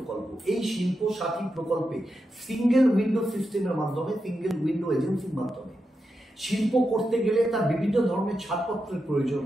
এই শিল্প সাথী প্রকল্পে সিঙ্গেল উইন্ডো সিস্টেমের মাধ্যমে, সিঙ্গেল উইন্ডো এজেন্সির মাধ্যমে শিল্প করতে গেলে তার বিভিন্ন ধরনের ছাড়পত্রের প্রয়োজন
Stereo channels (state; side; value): normal; both; correlation 0.87